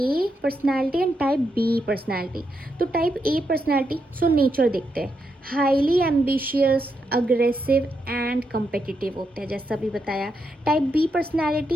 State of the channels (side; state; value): both; normal; correlation 0.82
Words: personality and type B personality. तो type A personality, so nature देखते हैं, highly ambitious, aggressive and competitive होते हैं जैसा भी बताया। टाइप बी